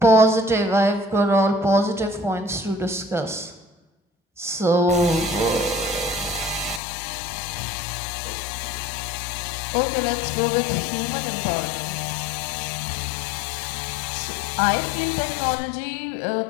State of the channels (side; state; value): right; drops out; at 6.8 s